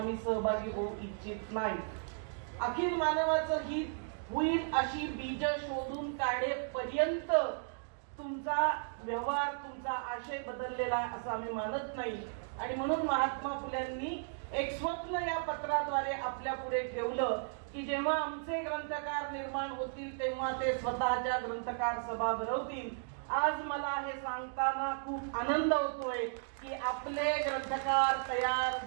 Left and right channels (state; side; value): silent; left; digital silence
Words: सहभागी होऊ इच्छित नाही. अखिल मानवाचं हित होईल अशी बीज शोधून काढेपर्यंत तुमचा व्यवहार, तुमचा आशय बदललेला असं आम्ही मानत नाही. आणि म्हणून महात्मा फुल्यांनी एक स्वप्न या पत्राद्वारे आपल्या पुढे ठेवलं की जेव्हा आमचे ग्रंथकार निर्माण होतील तेव्हा ते स्वतःच्या ग्रंथकार सभा भरवतील. आज मला हे सांगताना खूप आनंद होतोय की आपले ग्रंथकार तयार